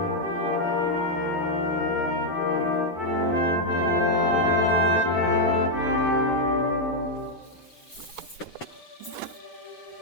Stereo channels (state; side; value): late; right; 8.0 ms